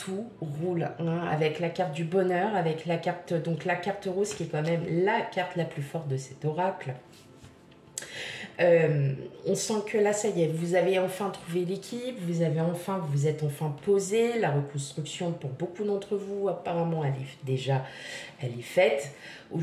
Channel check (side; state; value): both; identical; correlation 1.00